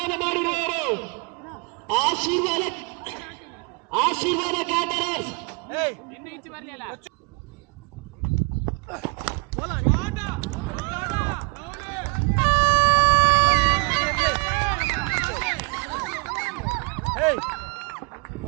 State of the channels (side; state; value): left; quieter; 32.4 dB